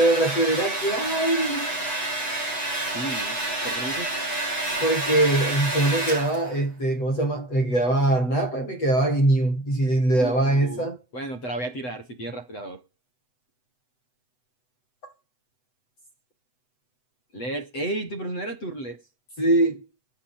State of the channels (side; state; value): right; late; 8.0 ms